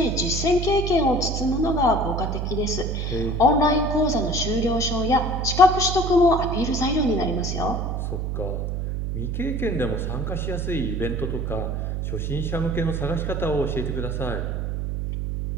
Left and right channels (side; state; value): right; noise; hum, 2 dB below the sound